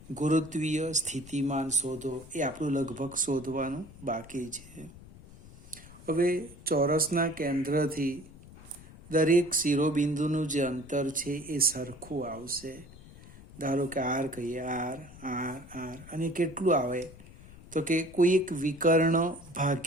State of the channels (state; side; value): noise; left; rumble, 19 dB below the sound